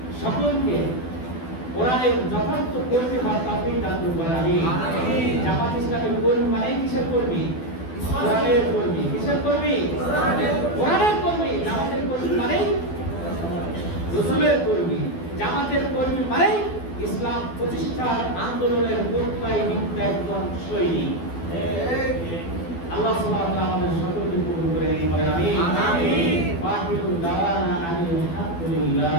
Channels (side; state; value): right; late; 12 ms